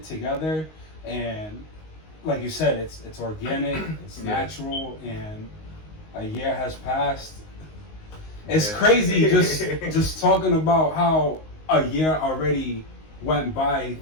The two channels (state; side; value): late; right; 19 ms